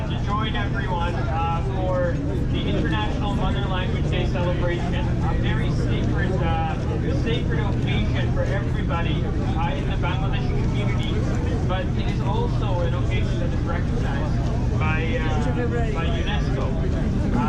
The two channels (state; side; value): identical; both; correlation 1.00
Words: to join everyone for the International Mother Language Day celebration. A very sacred occasion for everybody in the Bangladeshi community, but it is also an occasion that is recognized by UNESCO.